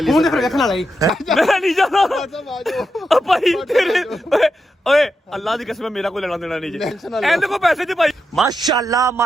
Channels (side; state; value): both; normal; correlation 0.86